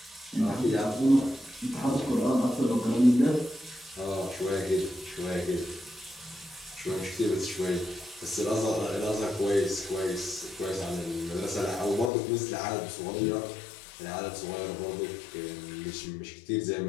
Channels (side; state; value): right; drops out; at 12.1 s